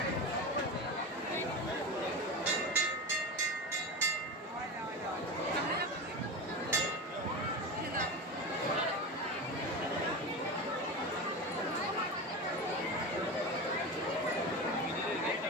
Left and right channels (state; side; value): normal; both; correlation 0.24